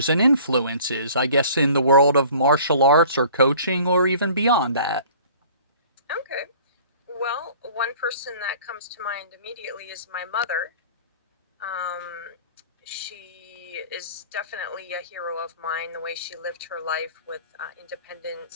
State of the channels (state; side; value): inverted; both; correlation -0.49